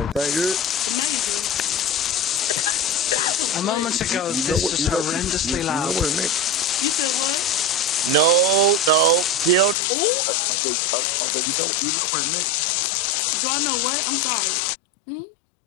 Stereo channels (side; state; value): right; drops out; at 9.8 s